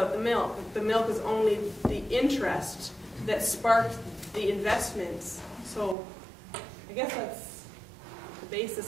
the milk. The milk was only the interest that sparked the investments. So I guess that's the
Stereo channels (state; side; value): drops out; left; at 6.0 s